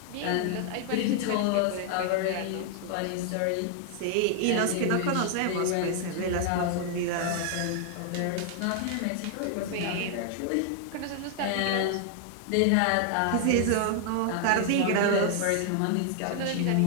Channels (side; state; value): both; different; correlation 0.00